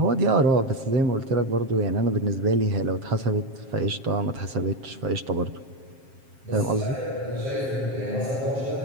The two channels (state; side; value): late; left; 7.5 ms